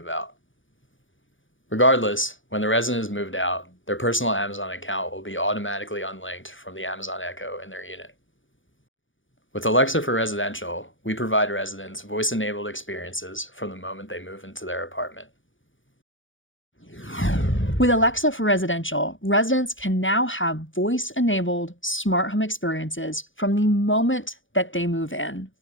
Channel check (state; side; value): late; right; 0.57 ms